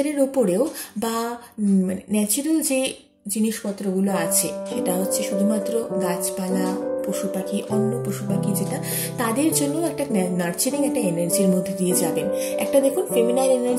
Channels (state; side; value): identical; both; correlation 1.00